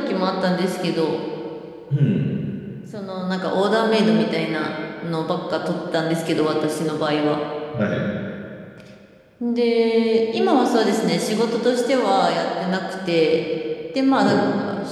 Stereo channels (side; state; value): both; identical; correlation 1.00